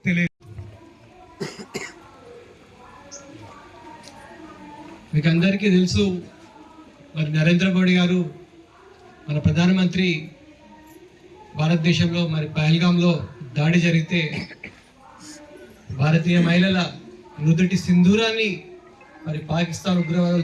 తెలియ. మీకు అందరికీ తెలుసు, మరి నరేంద్ర మోడీ గారు మన ప్రధానమంత్రి భారతదేశంలో మరి పహల్గాంలో దాడి జరిగితే భారతీయ మహిళల నుదుటి సింధూరాన్ని మరి పాకిస్తాన్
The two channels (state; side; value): identical; both; correlation 1.00